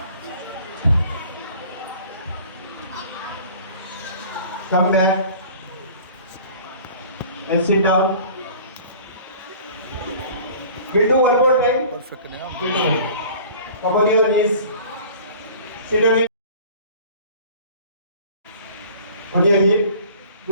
Come back and sit down. We'll do one more time. Perfect. Come on your knees. Sit on it. On your hip.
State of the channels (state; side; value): inverted; both; correlation -0.46